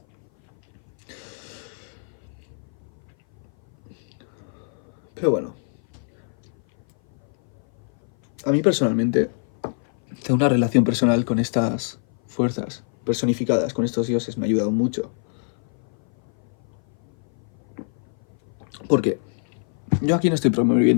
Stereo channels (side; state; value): right; silent; 57 dB below the other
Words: Pero bueno, a mí personalmente tengo una relación personal con estas fuerzas personificadas, con estos dioses, me ha ayudado mucho. Porque yo aquí no estoy